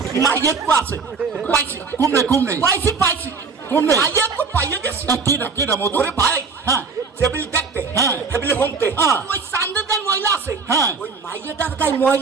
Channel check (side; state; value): left; quieter; 4.9 dB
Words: মায়ের কো আছে পাইছি কুমনে পাইছি কুমনে মায়ের কো পাইয়ে গেছি কেডা মধু ওরে ভাই হ্যাঁ টেবিল দেখতে হ্যাঁ। টেবিলে হোমতে হ্যাঁ। ওই সান্দের গায়ে ময়লা আছে হ্যাঁ। ওই মাইয়াটার গায়ে